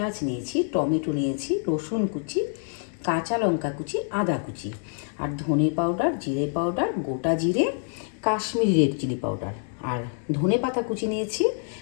নিয়েছি, টমেটো নিয়েছি, রসুন কুচি, কাঁচা লঙ্কা কুচি, আদা কুচি, আর ধনে পাউডার, জিরে পাউডার, গোটা জিরে, কাশ্মীরি রেড চিলি পাউডার, আর ধনে পাতা কুচি নিয়েছি,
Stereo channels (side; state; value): right; silent; 61 dB below the other